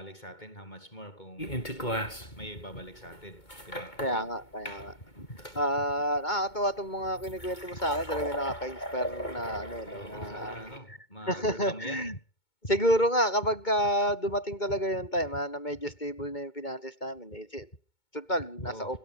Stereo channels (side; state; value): right; late; 2.2 ms